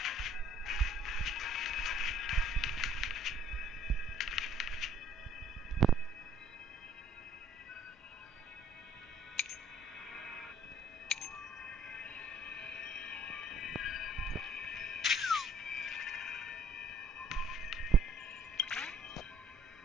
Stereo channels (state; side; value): normal; both; correlation 0.59